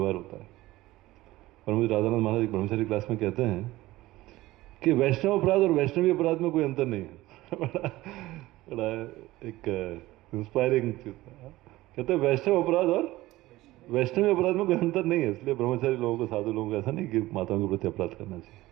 होता है। और मुझे राधानंद महाराज एक ब्रह्मचारी क्लास में कहते हैं कि वैष्णव अपराध और वैष्णवी अपराध में कोई अंतर नहीं है। बड़ा एक इंस्पायरिंग चीज है। कहते हैं वैष्णव अपराध और वैष्णवी अपराध में कोई अंतर नहीं है। इसलिए ब्रह्मचारी लोगों को, साधु लोगों को ऐसा नहीं कि माताओं के प्रति अपराध करना चाहिए।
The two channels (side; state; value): left; quieter; 17.7 dB